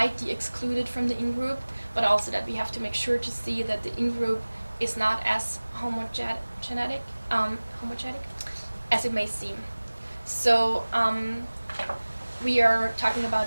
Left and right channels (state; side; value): inverted; both; correlation -1.00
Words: the excluded from the in-group, but also that we have to make sure to see that the in-group is not as homogenic as it may seem. So we are talking